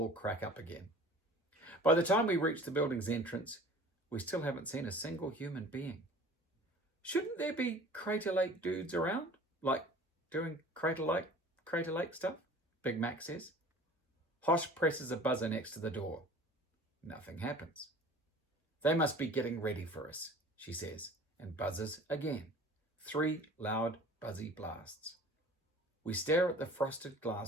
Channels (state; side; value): normal; both; correlation 0.45